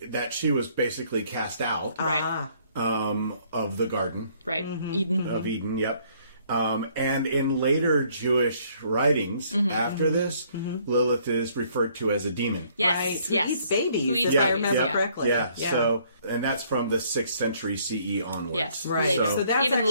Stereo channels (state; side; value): inverted; both; correlation -0.64